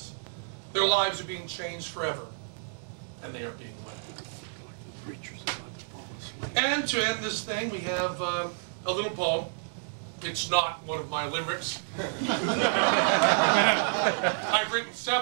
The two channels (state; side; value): silent; left; digital silence